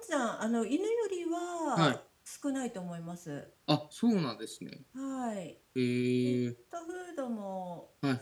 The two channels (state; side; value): identical; both; correlation 1.00